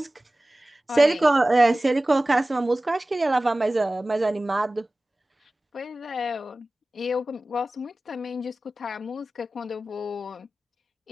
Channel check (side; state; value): both; normal; correlation 0.97